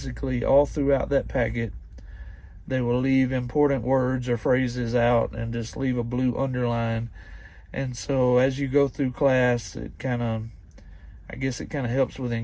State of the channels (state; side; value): identical; both; correlation 1.00